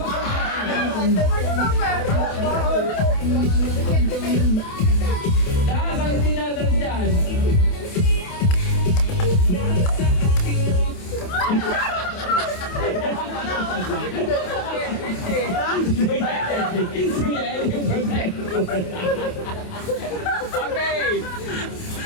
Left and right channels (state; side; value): late; right; 28 ms